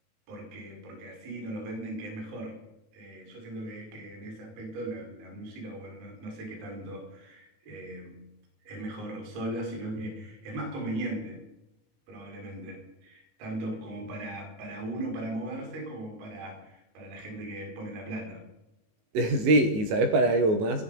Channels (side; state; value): left; late; 19 ms